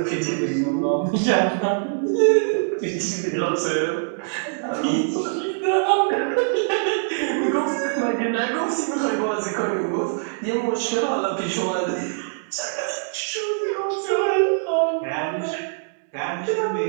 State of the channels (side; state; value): left; silent; digital silence